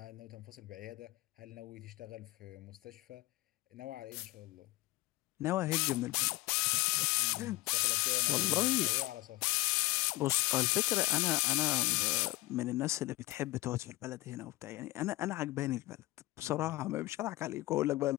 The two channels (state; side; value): quieter; right; 20.0 dB